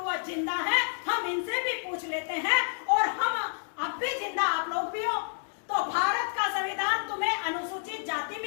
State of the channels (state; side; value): silent; right; digital silence